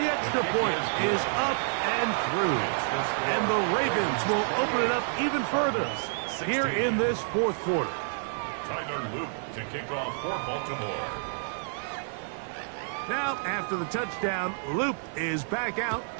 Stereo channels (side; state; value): left; silent; digital silence